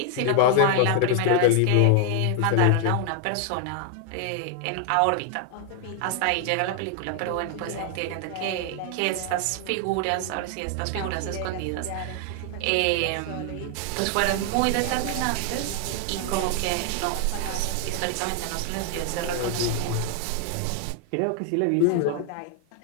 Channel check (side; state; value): both; different; correlation 0.00